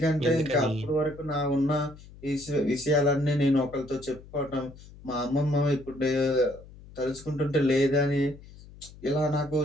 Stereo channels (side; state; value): left; noise; hum, 19 dB below the sound